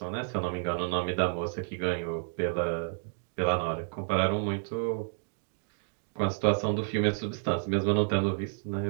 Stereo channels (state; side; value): silent; left; digital silence